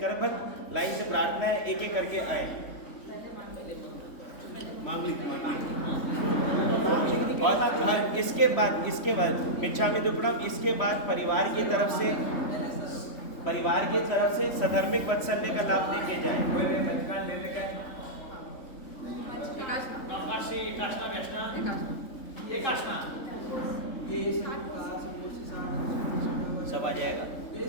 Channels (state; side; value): late; right; 3.5 ms